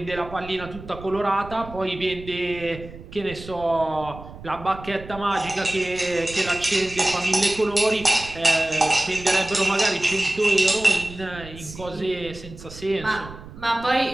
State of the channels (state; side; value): noise; right; rumble, 15 dB below the sound